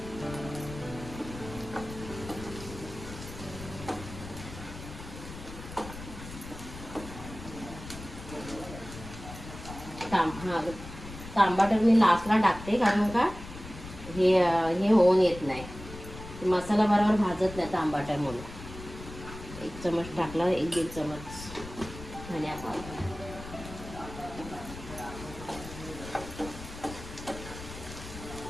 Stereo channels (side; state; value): left; noise; rumble, 13 dB below the sound